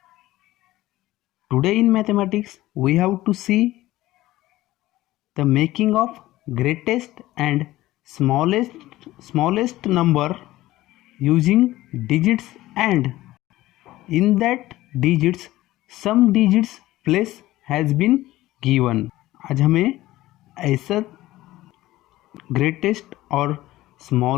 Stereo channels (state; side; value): quieter; right; 16.6 dB